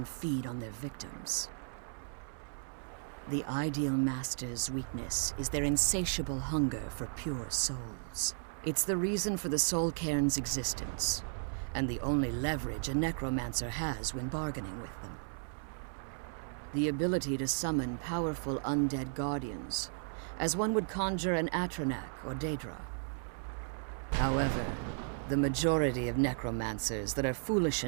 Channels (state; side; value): silent; left; 54 dB below the other